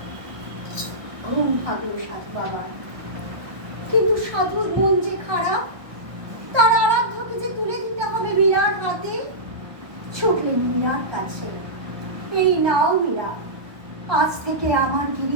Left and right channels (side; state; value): left; late; 1.2 ms